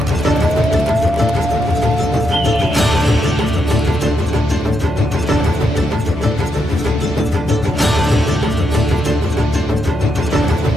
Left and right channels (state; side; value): normal; both; correlation 0.81